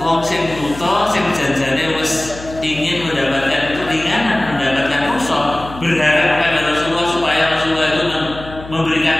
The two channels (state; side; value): noise; left; hum, 15 dB below the sound